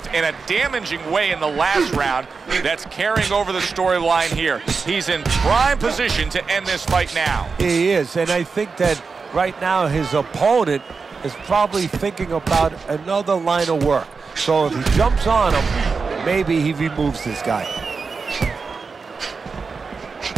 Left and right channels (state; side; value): quieter; left; 4.8 dB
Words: in a damaging way in the last round that's carrying over the storyline here. He's in prime position to end this fight now. He is, and I think that right now his opponent is probably thinking about another line of work. So if he jumps on him, maybe he removes this guy.